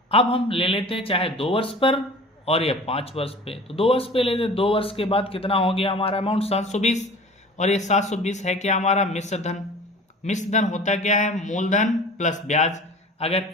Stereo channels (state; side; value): normal; both; correlation 0.42